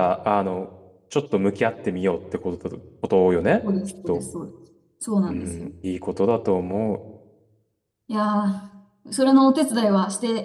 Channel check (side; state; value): both; identical; correlation 1.00